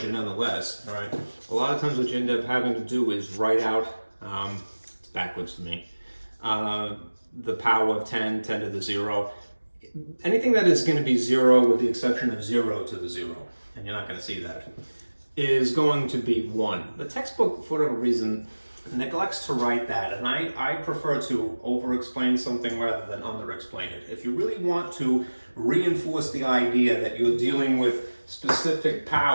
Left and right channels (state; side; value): inverted; both; correlation -1.00